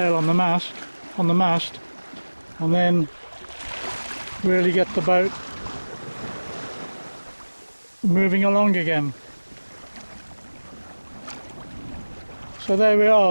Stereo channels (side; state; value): both; inverted; correlation -1.00